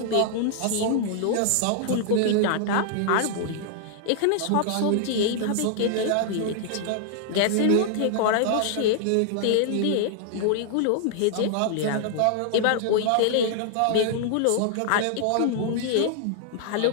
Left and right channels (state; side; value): different; both; correlation -0.01